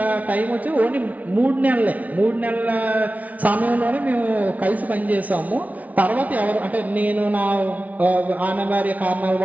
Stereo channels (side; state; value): left; late; 0.072 ms